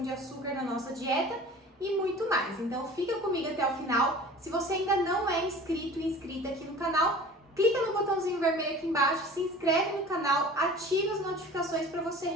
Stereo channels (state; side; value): normal; both; correlation 0.42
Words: de açúcar na nossa dieta e muito mais. Então fica comigo até o final. Se você ainda não é inscrito e inscrita aqui no canal, clica no botãozinho vermelho aqui embaixo, se inscreve no canal, ativa as notificações para você